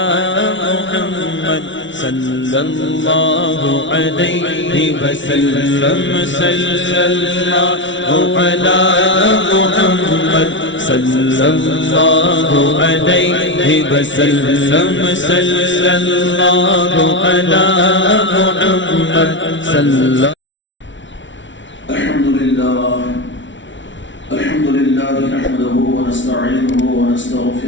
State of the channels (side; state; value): right; late; 0.55 ms